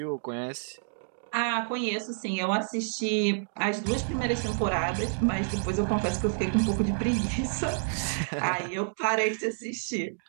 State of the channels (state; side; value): silent; left; digital silence